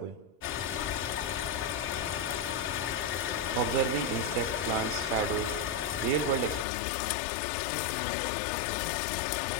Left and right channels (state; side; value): drops out; right; at 6.7 s